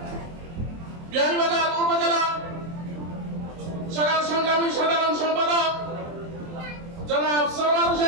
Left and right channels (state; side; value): late; left; 24 ms